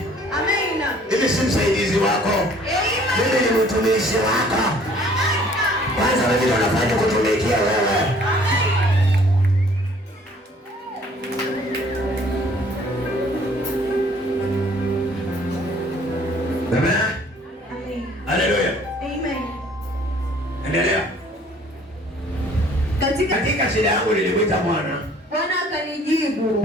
Amen. Mimi si msaidizi wako. Amen. Mimi ni mtumishi wako. Kwanza wewe ndio unafanya kutumikia wewe. Amen. Hallelujah. Amen. Endelea. Katika shida yangu nilimwita Bwana. Bwana akanijibu.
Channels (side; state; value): both; normal; correlation 0.56